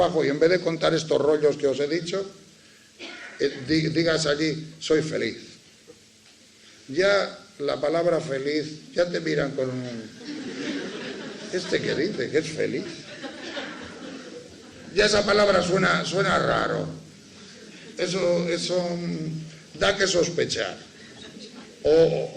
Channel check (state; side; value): identical; both; correlation 1.00